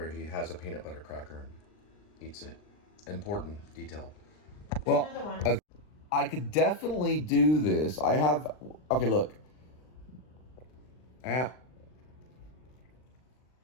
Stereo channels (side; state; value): right; late; 39 ms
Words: he has a peanut butter cracker and eats it. Important detail. Well, Another one. I could definitely do this. I have... Okay, look.